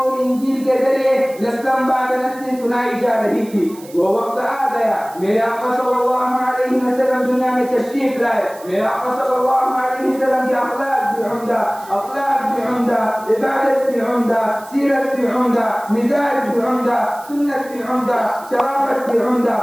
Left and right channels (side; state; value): right; noise; hiss, 21 dB below the sound